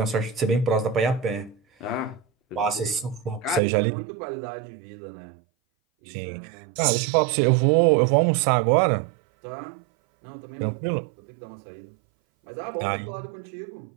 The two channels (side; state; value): left; drops out; at 3.6 s